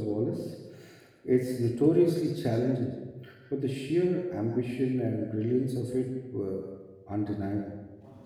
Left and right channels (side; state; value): both; identical; correlation 1.00